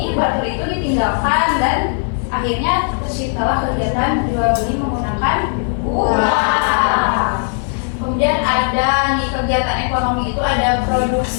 barter itu ditinggalkan dan akhirnya terciptalah kegiatan jual beli menggunakan uang. Kemudian ada di kegiatan ekonomi itu ada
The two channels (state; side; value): silent; right; 56 dB below the other